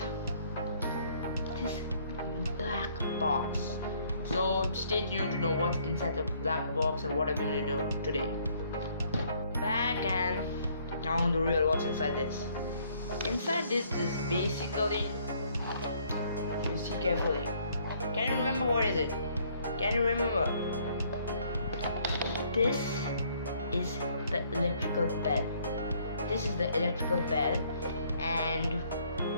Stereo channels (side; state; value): both; inverted; correlation -0.64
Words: this black box. So stay tuned to know what's inside the black box and what I'm going to do today. Back and now the real what's inside this. Inside this is basically, you see carefully. Can you remember what is it? Can you remember? This is the electrical bell. This is the electrical bell, and